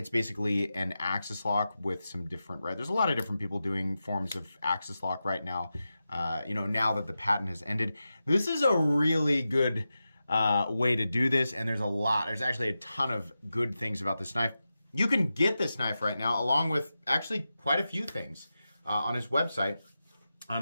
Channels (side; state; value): both; inverted; correlation -0.92